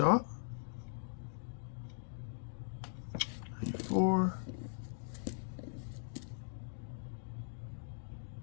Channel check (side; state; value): right; silent; digital silence